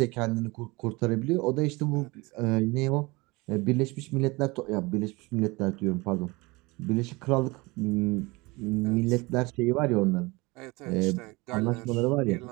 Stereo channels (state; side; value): quieter; left; 24.1 dB